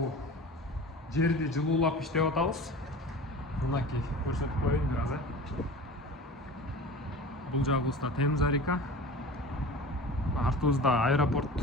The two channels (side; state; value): both; normal; correlation 0.36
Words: жерди жылуулап иштеп атабыз. Мынакей көрсөтүп коеюн бир аз. Бул жагыбызда Темза река. Артыбызда аэропорт